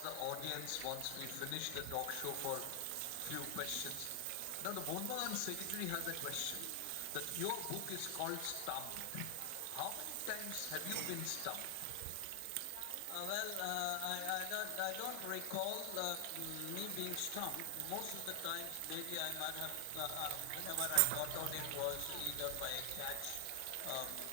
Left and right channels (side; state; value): both; different; correlation 0.00